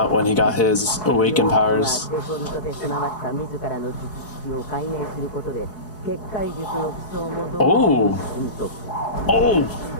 when he got his awakened powers. Oh! Oh!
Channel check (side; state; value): right; late; 4.7 ms